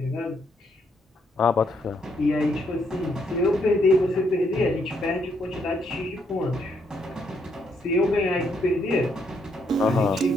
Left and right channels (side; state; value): both; normal; correlation 0.74